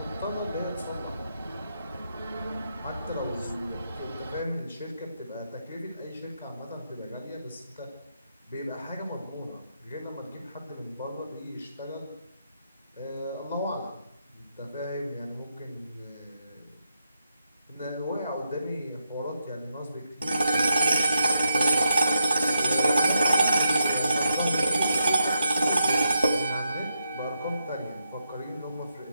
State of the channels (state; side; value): inverted; both; correlation -0.83